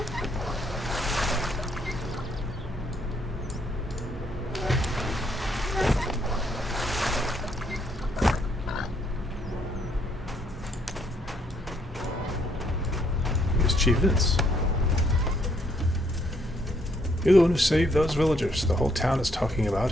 Here's Chief Vince. You're the one who saved those villagers. The whole town is talking about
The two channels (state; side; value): normal; both; correlation 0.70